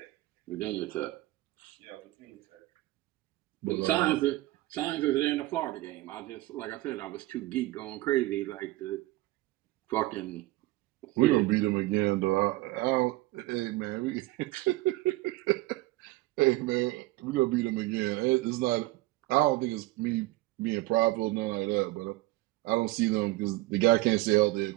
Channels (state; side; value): quieter; left; 18.7 dB